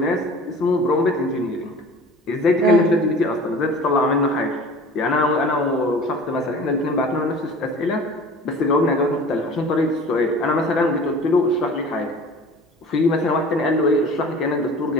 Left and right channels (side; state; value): both; normal; correlation 0.42